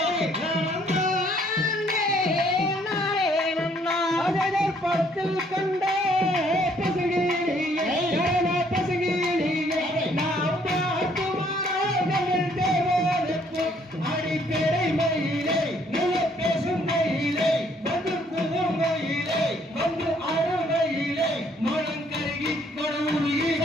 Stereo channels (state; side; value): normal; both; correlation 0.65